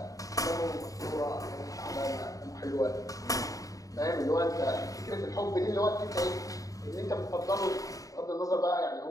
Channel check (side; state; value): right; late; 0.17 ms